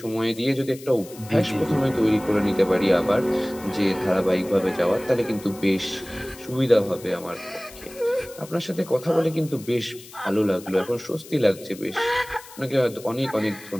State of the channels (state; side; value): noise; left; hiss, 19 dB below the sound